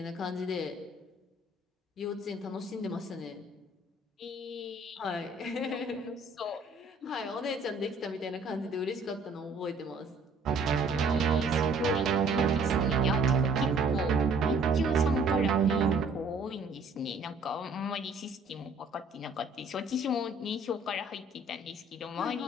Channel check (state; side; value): quieter; left; 3.0 dB